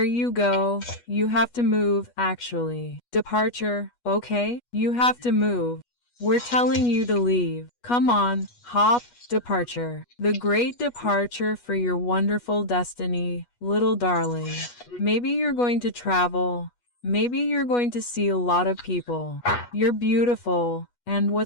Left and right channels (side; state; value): right; late; 8.3 ms